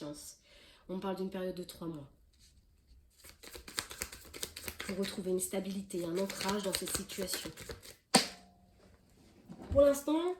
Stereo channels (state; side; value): identical; both; correlation 1.00